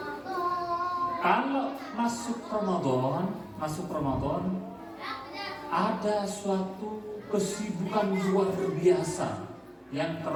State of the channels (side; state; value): both; identical; correlation 1.00